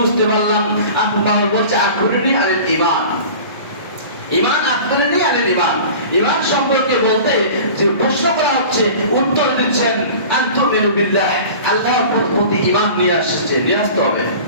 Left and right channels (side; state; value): both; inverted; correlation -0.40